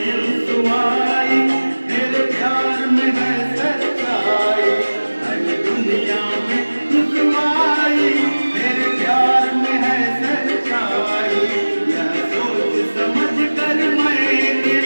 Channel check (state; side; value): inverted; both; correlation -1.00